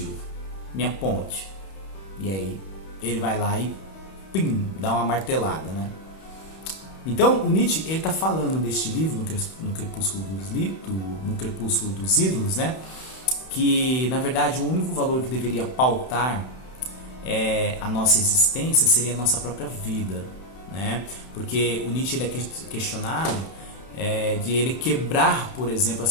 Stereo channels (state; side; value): late; right; 31 ms